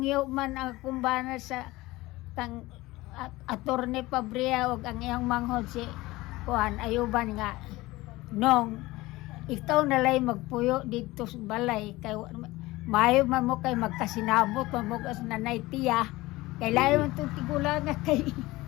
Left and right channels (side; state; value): right; quieter; 19.5 dB